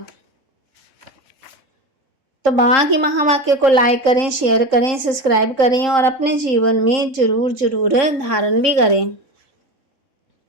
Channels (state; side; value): late; left; 3.8 ms